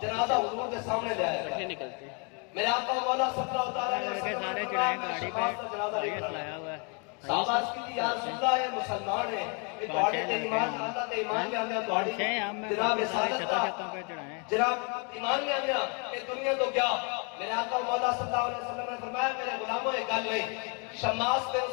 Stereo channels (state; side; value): quieter; right; 33.5 dB